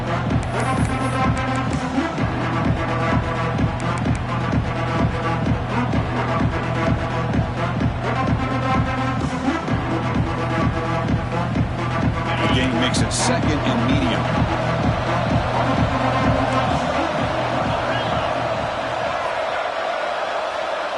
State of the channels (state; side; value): identical; both; correlation 1.00